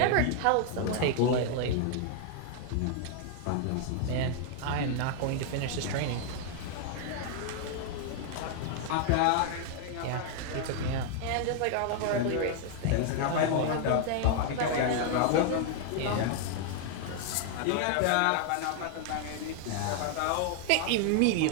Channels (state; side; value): different; both; correlation 0.00